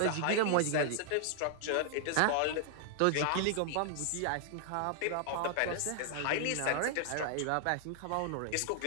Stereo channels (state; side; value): different; both; correlation 0.00